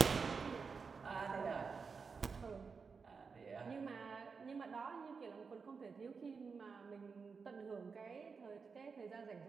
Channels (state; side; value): quieter; left; 5.2 dB